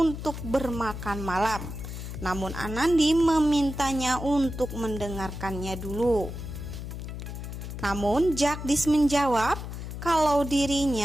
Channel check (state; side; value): noise; left; hum, 8 dB below the sound